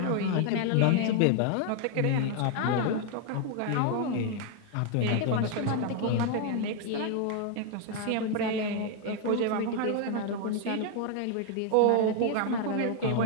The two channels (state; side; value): different; both; correlation 0.00